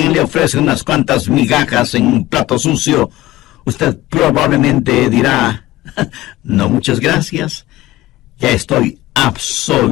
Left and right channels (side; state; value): right; quieter; 16.6 dB